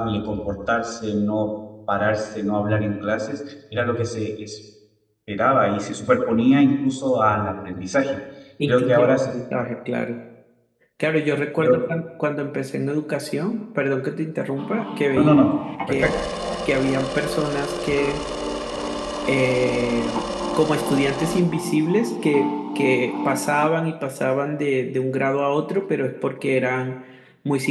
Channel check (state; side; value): identical; both; correlation 1.00